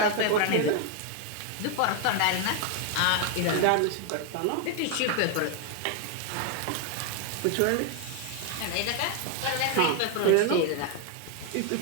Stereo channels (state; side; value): different; both; correlation 0.01